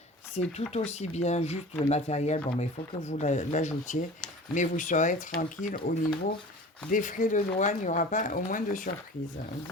C'est tout aussi bien, juste le matériel. Bon, mais il faut que vous l'ajoutiez. Mais vous serez tranquille au niveau des frais de douane, il n'y aura pas au moins de surprise.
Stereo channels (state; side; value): normal; both; correlation 0.40